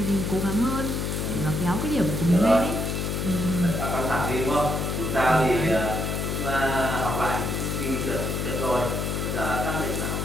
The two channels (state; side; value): noise; left; hum, 1 dB below the sound